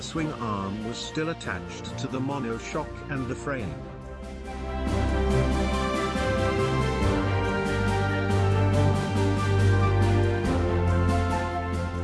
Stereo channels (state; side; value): identical; both; correlation 1.00